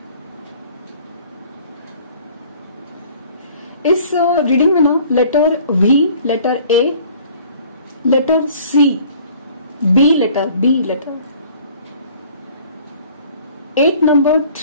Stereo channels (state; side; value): inverted; both; correlation -0.52